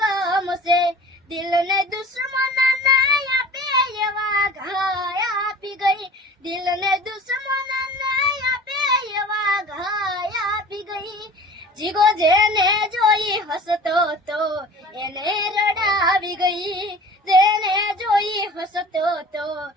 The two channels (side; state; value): both; normal; correlation 0.42